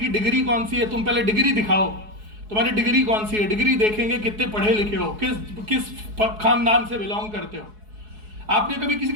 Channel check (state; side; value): late; left; 4.7 ms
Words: डिग्री कौन सी है, तुम पहले डिग्री दिखाओ, तुम्हारी डिग्री कौन सी है, डिग्री देखेंगे कितने पढ़े लिखे हो, किस खानदान से बिलोंग करते हो। आपने कभी किसी